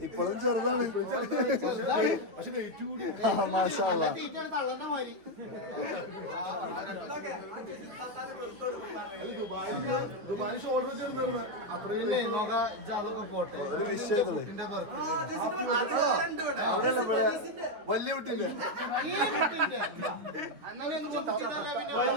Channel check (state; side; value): late; left; 9.9 ms